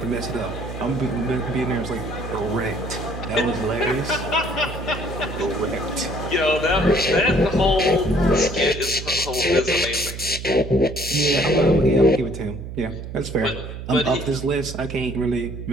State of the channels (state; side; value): noise; right; hum, 9 dB below the sound